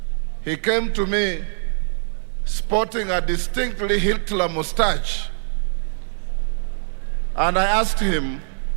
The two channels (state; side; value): silent; left; digital silence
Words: He came to me sporting a distinctly Hitler mustache. And I asked him,